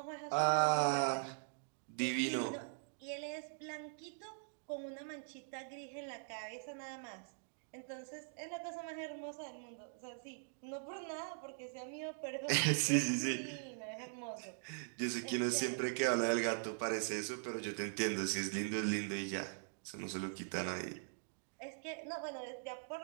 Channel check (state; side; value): silent; left; digital silence